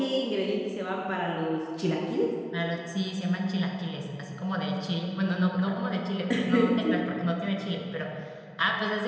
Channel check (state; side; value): identical; both; correlation 1.00